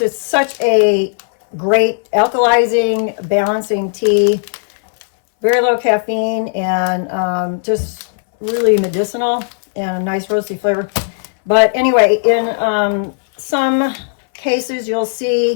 such a great alkalizing, balancing tea. Very low caffeine and just really medicinal and a nice roasty flavor. But anyway, in some cases you'll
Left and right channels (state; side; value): silent; right; 64 dB below the other